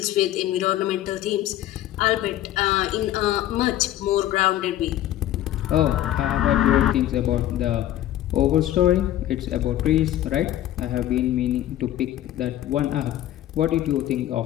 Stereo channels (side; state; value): right; quieter; 13.1 dB